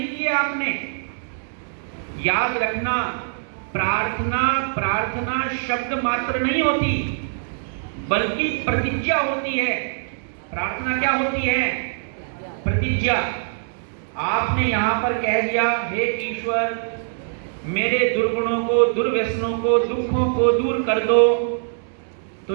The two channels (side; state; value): left; silent; digital silence